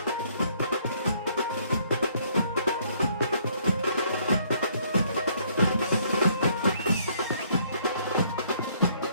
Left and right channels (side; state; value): both; inverted; correlation -0.65